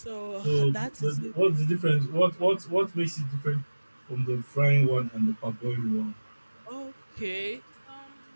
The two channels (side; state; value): both; inverted; correlation -1.00